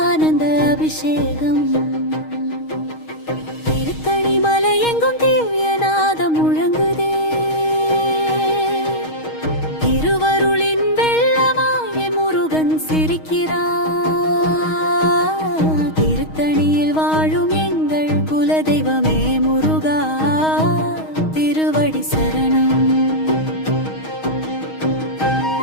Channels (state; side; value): late; right; 6.4 ms